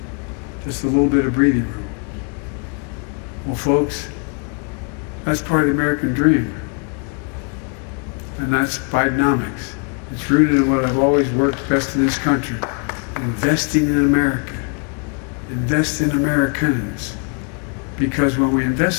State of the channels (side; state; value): right; quieter; 39.8 dB